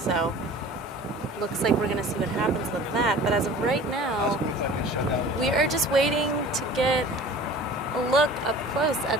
looks like we're going to see what happens with that. But as of right now, we are just waiting to get a look up close at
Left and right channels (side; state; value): both; normal; correlation 0.43